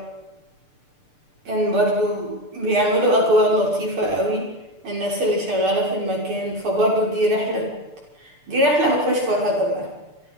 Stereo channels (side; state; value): left; late; 6.8 ms